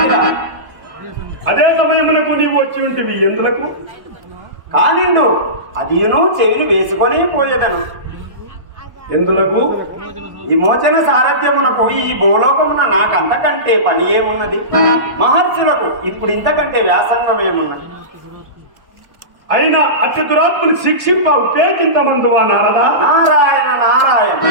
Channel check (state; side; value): late; left; 1.0 ms